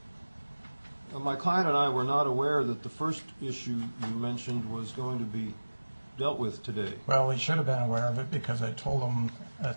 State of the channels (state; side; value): inverted; both; correlation -1.00